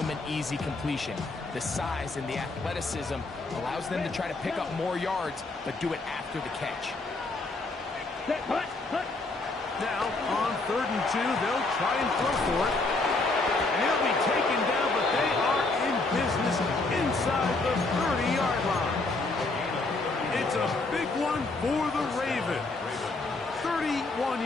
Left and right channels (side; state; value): right; quieter; 3.3 dB